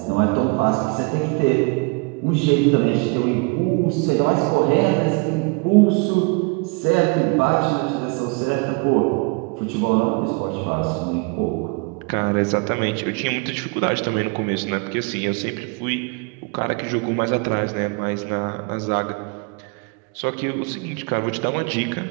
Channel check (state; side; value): quieter; left; 30.7 dB